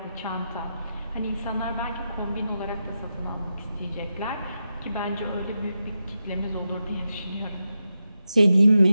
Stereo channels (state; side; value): inverted; both; correlation -0.88